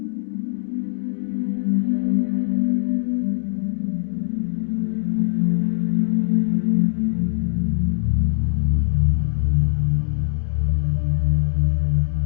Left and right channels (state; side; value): silent; right; digital silence